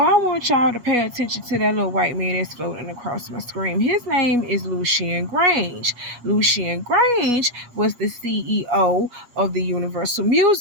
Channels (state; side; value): late; left; 8.3 ms